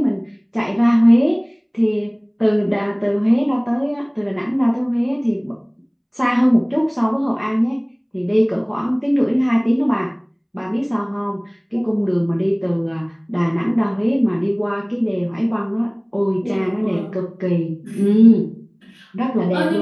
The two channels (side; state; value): both; identical; correlation 1.00